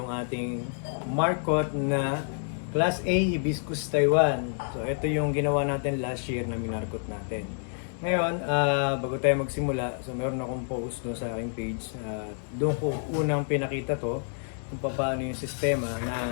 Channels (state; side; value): silent; right; digital silence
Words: ating markot na Class A Hibiscus Taiwan. So ito yung ginawa natin last year na minarkot natin. Ngayon, bago tayo magsimula, so meron akong post no sa aking page. Doon ko unang pinakita to kung paano yung sistema